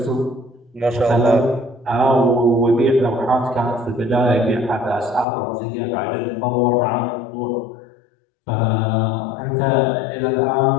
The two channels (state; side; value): drops out; right; at 5.2 s